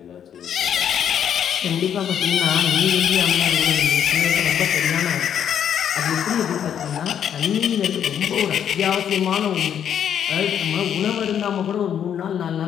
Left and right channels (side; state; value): right; quieter; 9.0 dB